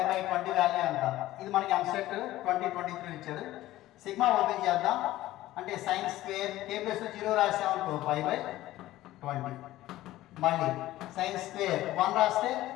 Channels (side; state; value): right; quieter; 15.6 dB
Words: by 20 value అంట. ఇది మనకి ఎంసెట్ 2023 ఇచ్చాడు. సిగ్మా ఓపెన్ చేద్దాం. అంటే sin square k plus 0 రాసామనుకో pi by 20. మళ్ళీ sin స్క్వేర్ 1 రాస్తే